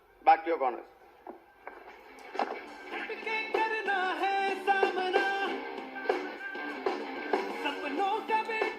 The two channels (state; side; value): identical; both; correlation 1.00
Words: back to your corners.